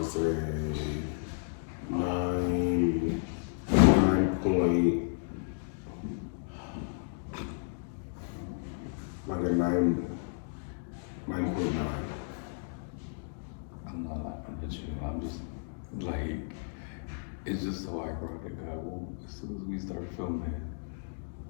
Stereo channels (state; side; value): silent; right; digital silence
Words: say 9 point, like a 9.9. I'm not laughing at you. I'm just like, it's just so ironic. As soon as we start filming,